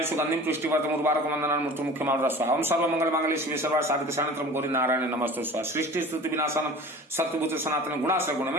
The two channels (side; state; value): both; normal; correlation 0.41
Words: सुगंधिम पुष्टिवर्धनम् उर्वारुकम् वन्दनान् मृत्युमुख्यमामृतं स्वाहा। ओम सर्वमंगलमांगल्ये शिवे सर्वार्थसाधिके शरण्यं गौरी नारायणे नमस्तुते स्वाहा। सृष्टि स्तुति विनाशनम सत्यभूत सनातन गुणाश्रय